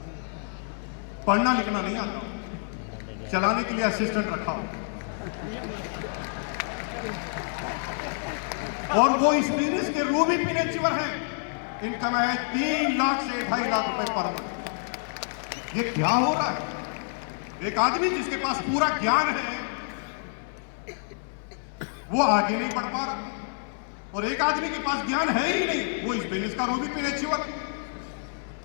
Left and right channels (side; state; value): right; silent; 59 dB below the other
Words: पढ़ना लिखना नहीं आता, चलाने के लिए असिस्टेंट रखा हो। और वो इस बिजनेस के रूबी पिन अचीवर हैं। इनकम है 3 लाख से 2.5 लाख रुपए पर मंथ। ये क्या हो रहा है? एक आदमी जिसके पास पूरा ज्ञान है वो आगे नहीं बढ़ पा रहा, और एक आदमी के पास ज्ञान है ही नहीं, वो इस बिजनेस का रूबी पिन अचीवर।